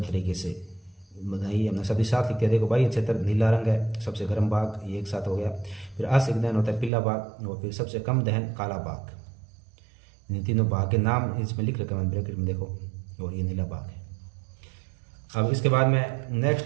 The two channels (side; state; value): left; drops out; at 6.9 s